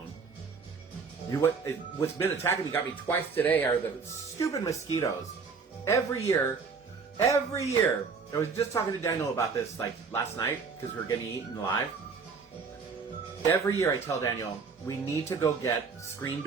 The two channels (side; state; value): left; quieter; 5.2 dB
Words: What's been attacking me, got me twice today, are the stupid mosquitoes. Every year, I was just talking to Daniel about this, like, last night, because we were getting eaten alive. Every year I tell Daniel, we need to go get screen